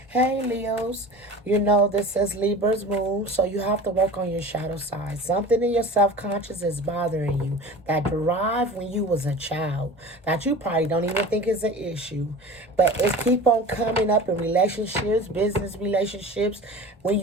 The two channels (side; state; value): both; normal; correlation 0.37